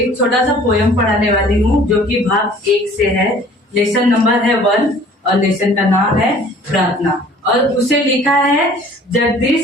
छोटा सा पोयम पढ़ाने वाली हूँ जो कि भाग 1 से है। लेसन नंबर है 1 और लेसन का नाम है प्रार्थना और उसे लिखा है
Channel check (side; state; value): both; normal; correlation 0.51